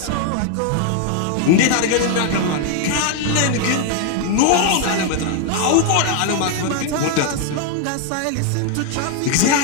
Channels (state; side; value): different; both; correlation 0.01